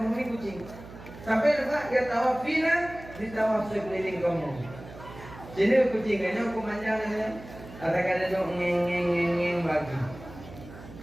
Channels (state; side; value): noise; right; hum, 16 dB below the sound